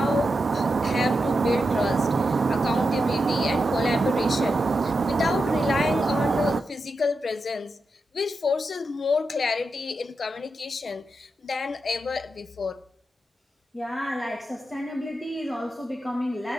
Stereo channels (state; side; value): normal; both; correlation 0.87